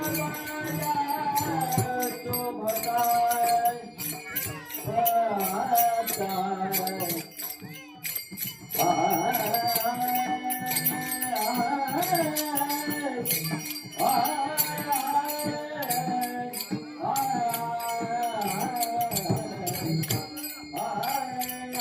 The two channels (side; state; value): both; identical; correlation 1.00